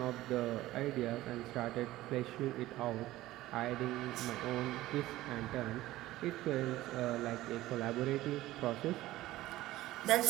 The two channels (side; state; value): left; quieter; 16.3 dB